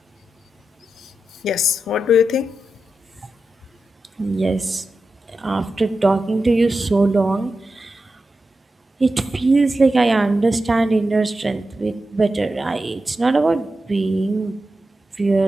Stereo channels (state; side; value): normal; both; correlation 0.91